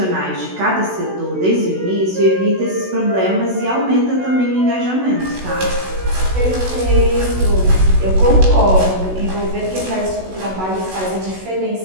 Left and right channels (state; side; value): late; left; 16 ms